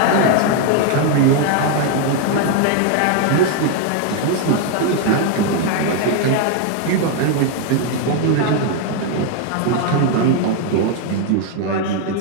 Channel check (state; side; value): different; both; correlation 0.00